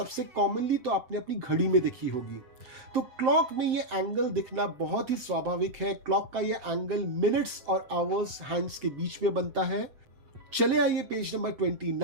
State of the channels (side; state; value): left; late; 7.8 ms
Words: कॉमनली तो आपने अपनी घड़ी में देखी होगी। तो क्लॉक में ये एंगल दिखना बहुत ही स्वाभाविक है। क्लॉक का ये एंगल मिनट्स और आवर्स हैंड्स के बीच में बनता है। चले आइए पेज नंबर